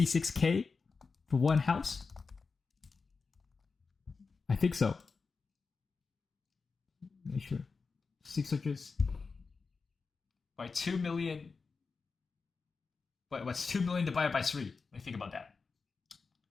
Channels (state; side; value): quieter; right; 4.6 dB